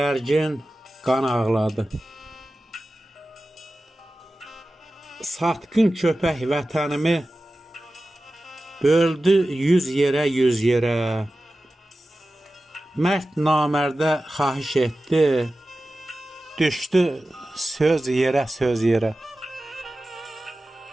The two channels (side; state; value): both; normal; correlation 0.95